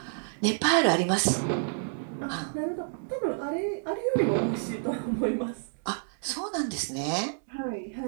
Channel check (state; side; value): silent; left; digital silence